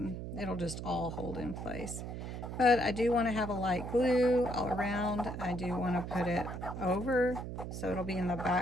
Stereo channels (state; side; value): noise; right; hum, 7 dB below the sound